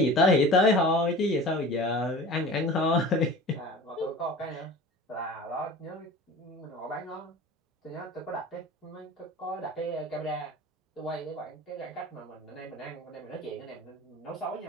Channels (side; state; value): both; normal; correlation 0.39